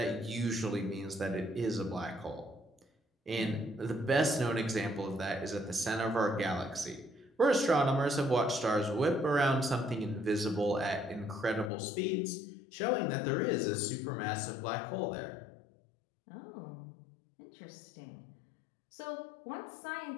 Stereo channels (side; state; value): right; drops out; at 11.7 s